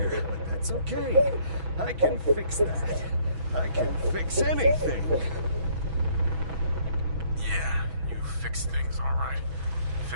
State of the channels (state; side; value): late; left; 6.1 ms